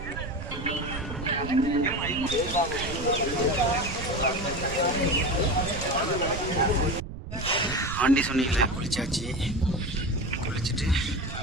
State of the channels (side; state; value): right; noise; rumble, 9 dB below the sound